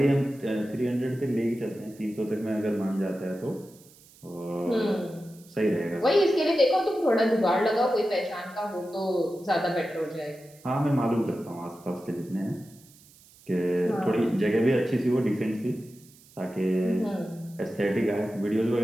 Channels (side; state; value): right; noise; hiss, 25 dB below the sound